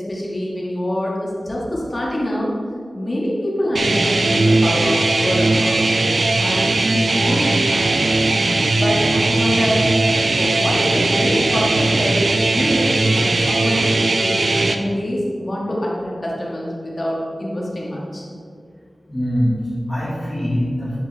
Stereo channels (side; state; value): both; normal; correlation 0.96